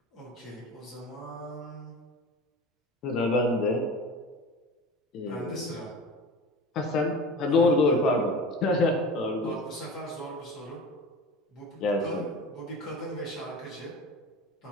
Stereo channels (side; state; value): both; normal; correlation 0.35